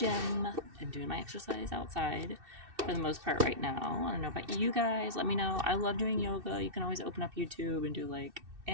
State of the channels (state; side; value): late; left; 2.6 ms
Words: and doing my exercise outside for the most part right now. I don't know about you guys. Let me know. I love doing yoga. You can always open up YouTube and do, like,